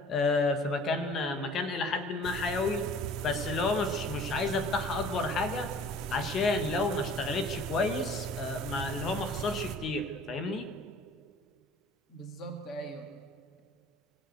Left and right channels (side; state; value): both; normal; correlation 0.48